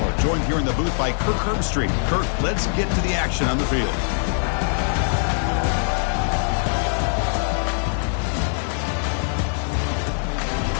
joined here in the booth by Kirk Herbstreit. Kirk, let's get to the action on the field.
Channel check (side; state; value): right; silent; 64 dB below the other